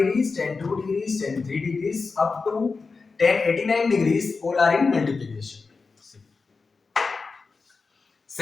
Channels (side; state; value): right; quieter; 4.4 dB